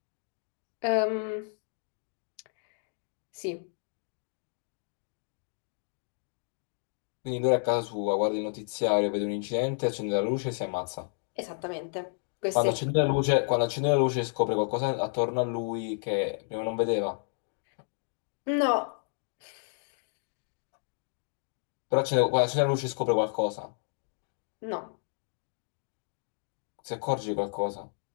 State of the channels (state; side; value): silent; right; 57 dB below the other